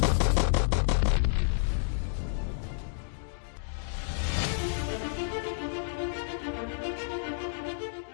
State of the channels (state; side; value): silent; right; digital silence